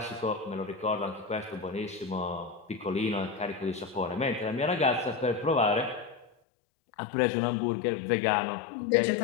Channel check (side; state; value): right; drops out; at 6.3 s